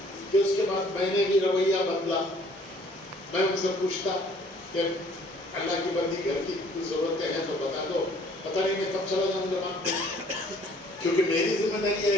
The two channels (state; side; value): normal; both; correlation 0.58